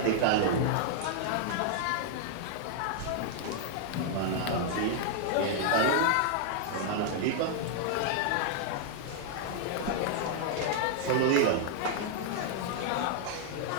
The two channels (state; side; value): different; both; correlation -0.01